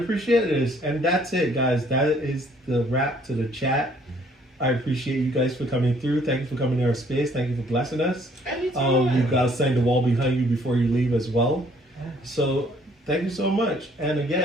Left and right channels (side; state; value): both; normal; correlation 0.62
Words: this. And that's it, guys. That is the wrap to the chat. I appreciate you guys for coming through. Thank you for coming to our space. Thank you for blessing us. Anytime. You guys sang the wall behind you before you leave as well. So thank you so much. And